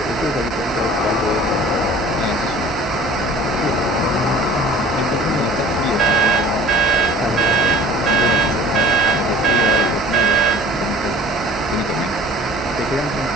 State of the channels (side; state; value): both; normal; correlation 0.45